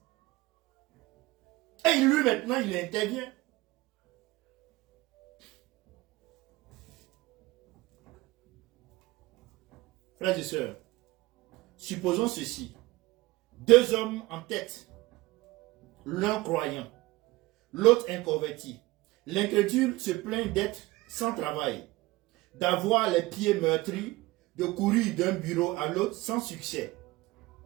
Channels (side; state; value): left; quieter; 20.0 dB